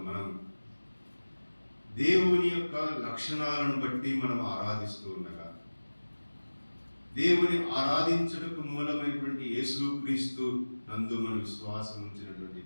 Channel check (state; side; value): inverted; both; correlation -1.00